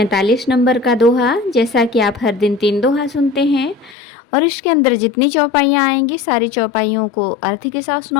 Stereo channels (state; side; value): drops out; right; at 4.0 s